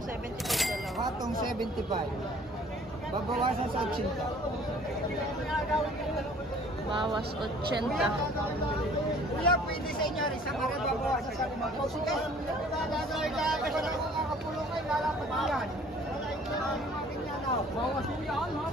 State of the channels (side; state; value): both; normal; correlation 0.53